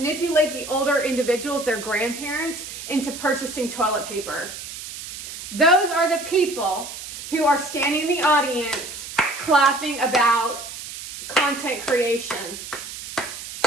the older individuals, their grandparents, into purchasing toilet paper. Those are the people who are standing in the audience clapping about content creation.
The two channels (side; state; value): right; noise; hiss, 10 dB below the sound